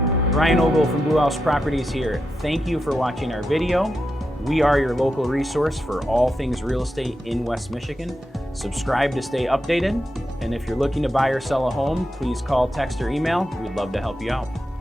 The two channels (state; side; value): normal; both; correlation 0.87